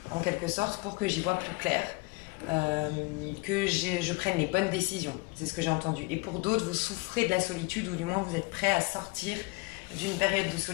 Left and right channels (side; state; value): right; quieter; 25.6 dB